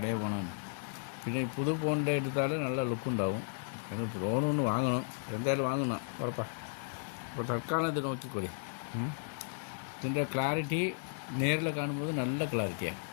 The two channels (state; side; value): silent; right; 55 dB below the other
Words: ഫോണാണ് പിന്നെ പുതു ഫോണിൻ്റെ എടുത്താൽ നല്ല ലുക്കുണ്ടാവും എന്നിട്ട് ഫോണൊന്ന് വാങ്ങണം എന്തായാലും വാങ്ങണം ഉറപ്പാണ് അപ്പോൾ തൽക്കാലം ഇത് നോക്കിക്കോളി ഇതിൻ്റെ ക്ലാരിറ്റി നേരിൽ കാണുമ്പോൾ നല്ല ക്ലാരിറ്റിയാണ്